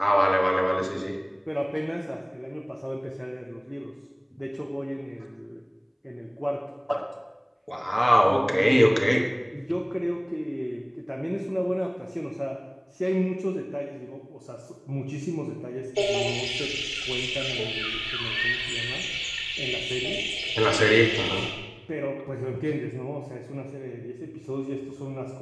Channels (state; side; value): identical; both; correlation 1.00